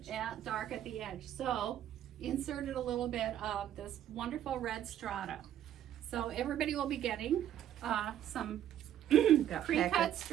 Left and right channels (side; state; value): left; quieter; 11.1 dB